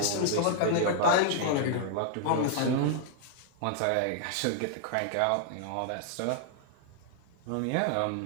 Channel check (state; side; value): different; both; correlation -0.01